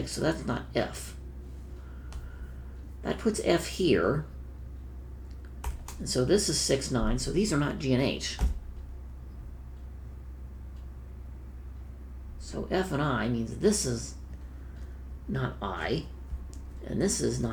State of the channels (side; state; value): both; identical; correlation 1.00